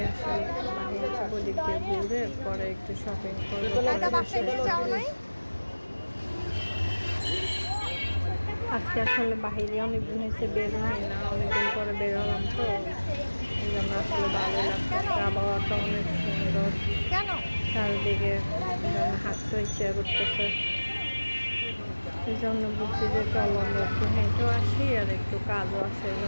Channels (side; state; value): both; inverted; correlation -1.00